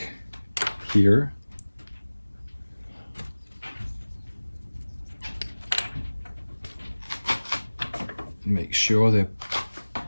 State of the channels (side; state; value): both; inverted; correlation -1.00